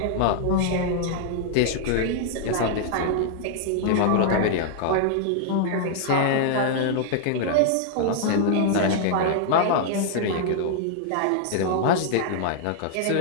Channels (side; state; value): both; different; correlation -0.01